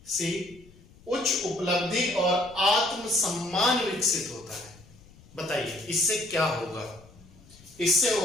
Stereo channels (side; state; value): left; noise; rumble, 24 dB below the sound